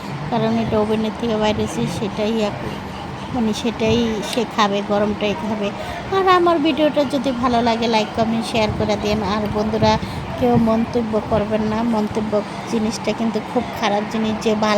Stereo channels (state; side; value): identical; both; correlation 1.00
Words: কারণ এটা ওভেনের থেকে বাইরেছি, সেটাই মানে সেটাই সে খাবে, গরমটাই খাবে। আর আমার ভিডিওটা যদি ভালো লাগে লাইক কমেন্ট শেয়ার করে দিন। আর বন্ধুরা কেউ মন্তব্য করবেন না, মন্তব্য জিনিসটা কিন্তু খুব খারাপ জিনিস, যে